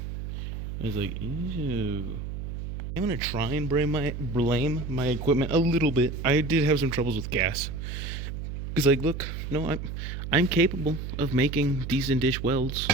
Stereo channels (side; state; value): right; noise; hum, 6 dB below the sound